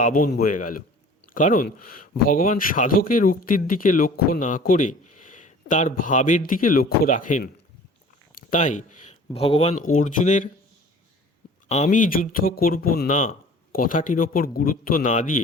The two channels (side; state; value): both; normal; correlation 0.46